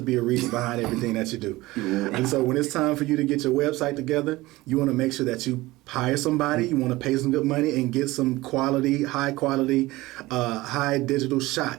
be a reason behind everything that you do. And so when it's time for you to get your website together, you want to make sure that you hire somebody, you want to pay some good money and get some high quality, high digital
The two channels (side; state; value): left; quieter; 19.3 dB